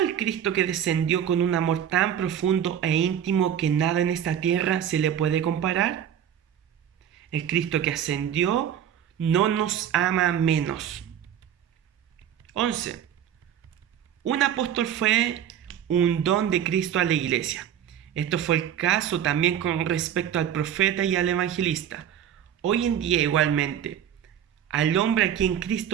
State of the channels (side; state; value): left; quieter; 9.6 dB